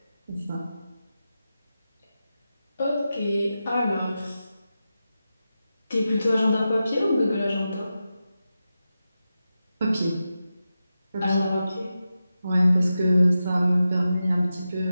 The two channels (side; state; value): both; inverted; correlation -0.91